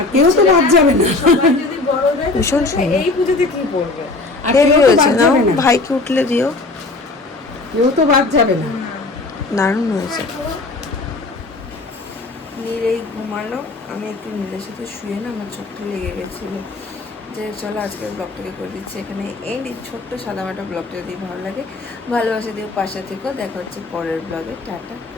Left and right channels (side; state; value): right; quieter; 3.3 dB